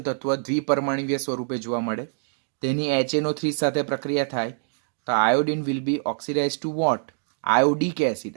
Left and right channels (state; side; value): silent; left; digital silence